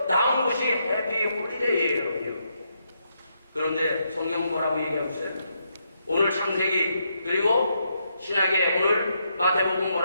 나온 것이 해피 홀리데이예요. 그런데 성경은 뭐라고 얘기하고 있어요? 오늘 창세기 그리고 신약의 오늘 마태복음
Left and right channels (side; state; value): both; inverted; correlation -0.79